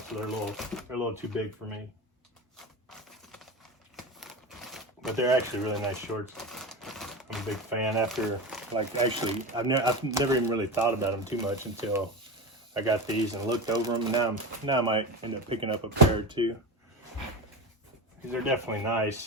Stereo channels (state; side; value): normal; both; correlation 0.22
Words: they're a little too big for me. But they're actually really nice shorts. I'm a big fan. After, like, actually, I've never even really thought about them too much until I got these and looked over them. And now I might end up picking up a pair or 2. They're definitely